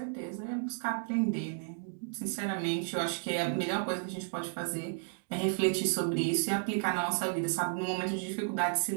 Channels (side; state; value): left; silent; 56 dB below the other